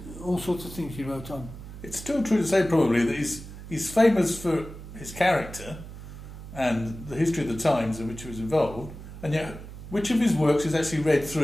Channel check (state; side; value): noise; right; hum, 13 dB below the sound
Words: sorts of things he wrote on. It's still true to say probably that he's famous for his character and the history of the times in which he was involved, and yet which of his works is actually read